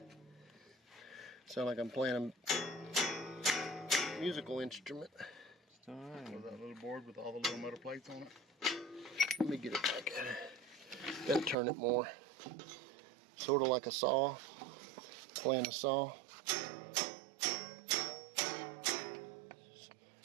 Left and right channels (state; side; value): drops out; left; at 11.6 s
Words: Sound like I'm playing a musical instrument. It's all right. With that little board with all the little metal plates on it. Let me get it back at it. Gotta turn it more. Sort of like a saw. Playing a saw.